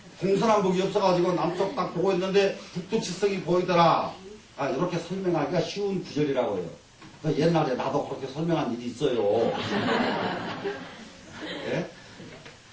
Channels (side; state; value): both; identical; correlation 1.00